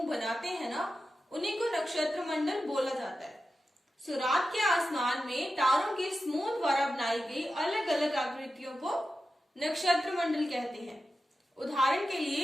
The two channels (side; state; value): both; normal; correlation 0.92